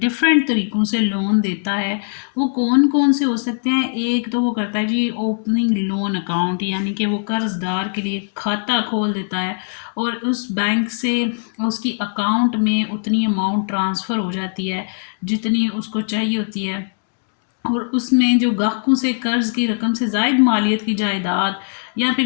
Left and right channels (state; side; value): silent; right; digital silence